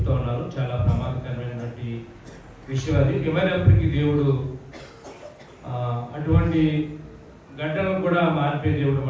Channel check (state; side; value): identical; both; correlation 1.00